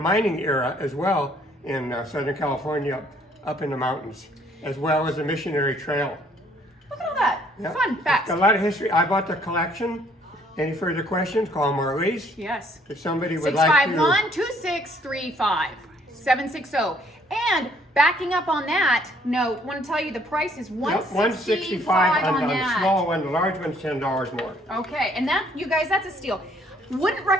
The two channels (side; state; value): both; normal; correlation 0.63